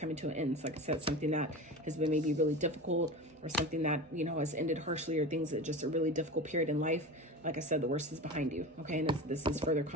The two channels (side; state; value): both; normal; correlation 0.29